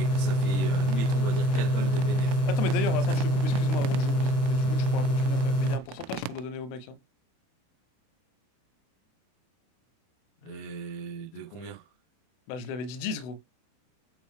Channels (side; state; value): right; late; 31 ms